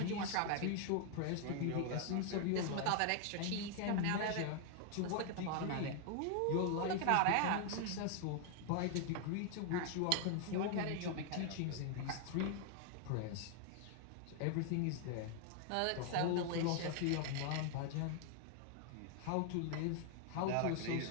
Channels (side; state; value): both; different; correlation 0.00